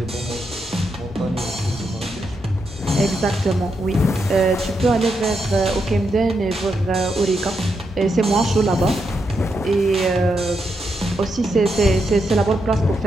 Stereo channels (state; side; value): normal; both; correlation 0.83